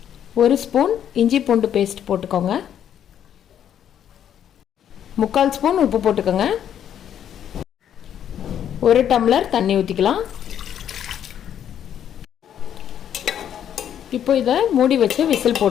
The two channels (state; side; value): quieter; right; 9.7 dB